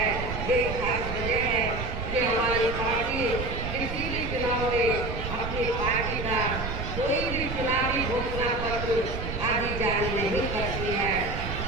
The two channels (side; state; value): right; noise; rumble, 5 dB below the sound